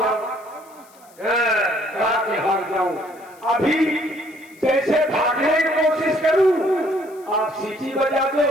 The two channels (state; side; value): noise; left; hiss, 27 dB below the sound